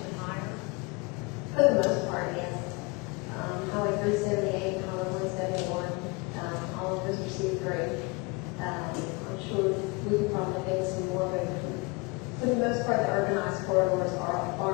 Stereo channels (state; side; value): quieter; right; 27.5 dB